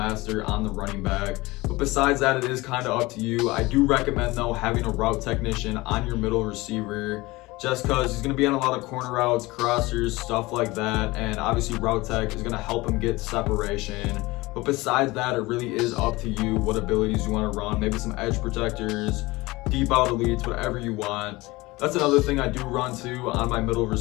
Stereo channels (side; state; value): right; quieter; 21.3 dB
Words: on the running back. But besides that, it is kind of up to you. I do recommend, though, having a route technician on your middle receiver, just because he's going to be on a lot of corner routes, crossers, stuff like that. And obviously route tech is going to help him get separation. But besides that, it really is up to you what abilities you want to run. Maybe some edge protectors, deep out elites, whatever you want. That's another thing I do run too on my middle